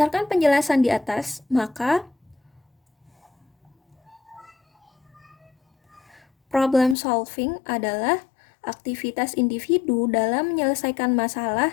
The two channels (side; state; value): right; drops out; at 7.0 s